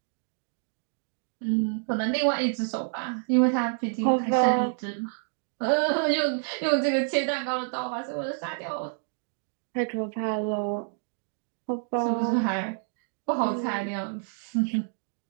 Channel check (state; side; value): silent; left; digital silence